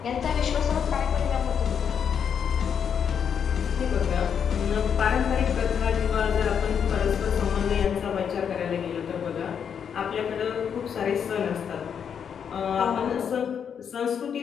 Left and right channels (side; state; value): right; quieter; 7.6 dB